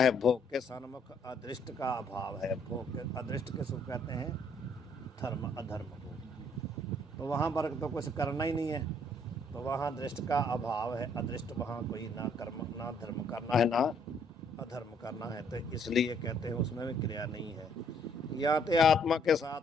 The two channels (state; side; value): normal; both; correlation 0.66